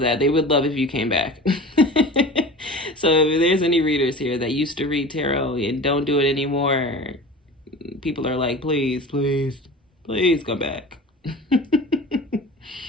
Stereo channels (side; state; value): both; normal; correlation 0.37